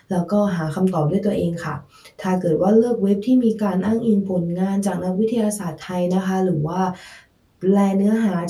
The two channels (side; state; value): both; identical; correlation 1.00